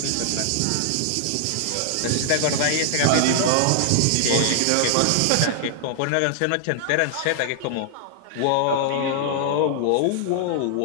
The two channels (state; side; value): different; both; correlation -0.01